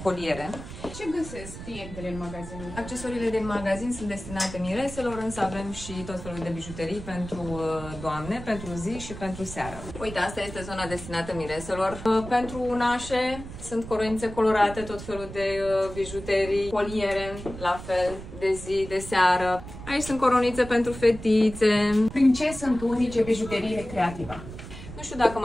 coliere. Ce găsesc clientele în magazinul? Accesoriile din magazin sunt destinate mireselor, însă avem și tot felul de bijuterii pentru doamne, pentru zi și pentru seară. Uite, asta este zona destinată mireselor. Pentru nașe sunt coroinițe colorate, tot felul de bijuterii, coliere, la fel, de zi, de seară. Aici sunt coronițe pentru fetițe. Prin ce sunt unice bijuteriile Creativa? Nu știu dacă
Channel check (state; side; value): noise; right; rumble, 12 dB below the sound